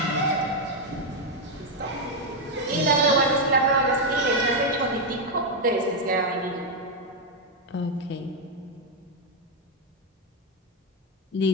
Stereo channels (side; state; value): both; normal; correlation 0.02